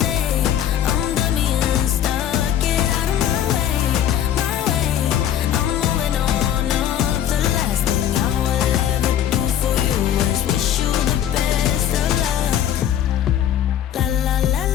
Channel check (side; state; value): right; quieter; 10.6 dB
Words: I'm done being stuck. Get out of my way, my way. I'm moving on up. The last thing I will ever do for you is wish you the best of luck. La la la